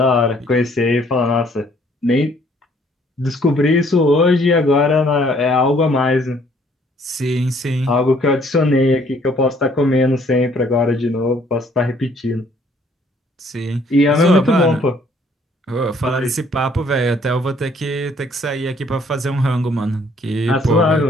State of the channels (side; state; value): both; normal; correlation 0.62